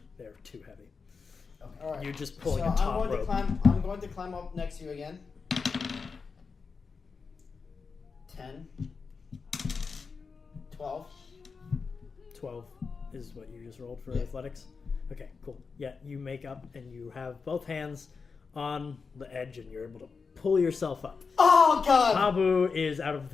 They're too heavy. All right. You're just pulling so a top I'm going rope. I'm going to climb up next to you again. 10. 12. 12 is what you just rolled for Yeah. athletics? Okay, cool. Yeah, you make up and you have both hands on the edge and you're able to pull yourself up. Oh God! Habu is out of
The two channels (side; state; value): right; quieter; 5.0 dB